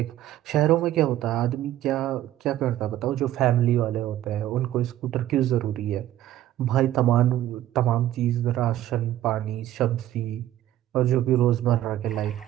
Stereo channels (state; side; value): quieter; left; 13.2 dB